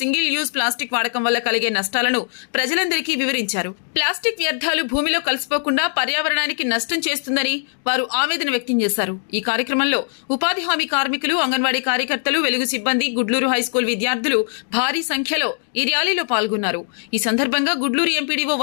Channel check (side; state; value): right; silent; digital silence